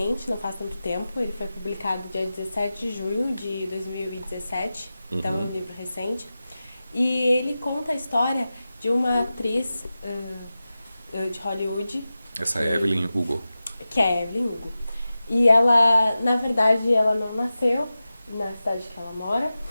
não faz tanto tempo, ele foi publicado dia 17 de junho de 2017, então é um livro recente. E ele conta a história de uma atriz de Hollywood. Essa é Evelyn Hugo. Que é Evelyn Hugo. E ela, na verdade, ela não nasceu na cidade que ela mora.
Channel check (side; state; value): both; inverted; correlation -0.94